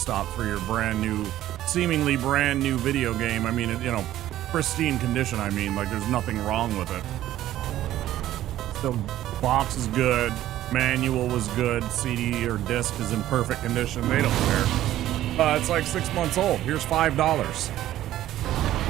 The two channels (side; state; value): left; quieter; 13.5 dB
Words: for your brand new, seemingly brand new video game. I mean, you know, pristine condition. I mean, like there's nothing wrong with it. The box is good, manual was good, CD or disc is in perfect condition. They don't care. It's like 6 months old. Here's $5.